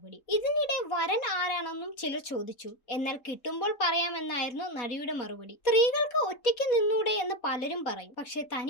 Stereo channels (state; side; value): late; right; 3.7 ms